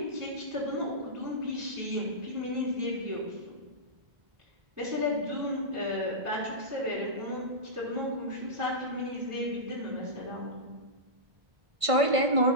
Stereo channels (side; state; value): left; late; 1.5 ms